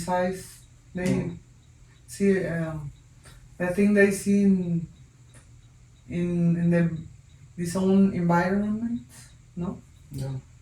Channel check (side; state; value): both; identical; correlation 1.00